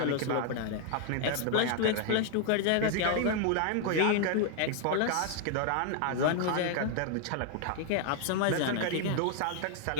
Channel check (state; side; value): different; both; correlation 0.00